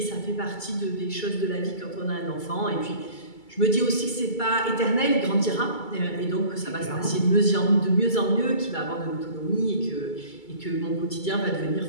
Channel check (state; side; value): late; right; 2.3 ms